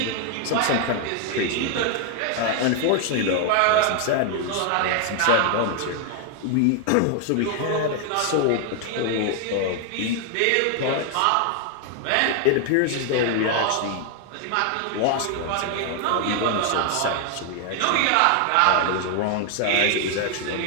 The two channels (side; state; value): both; different; correlation 0.00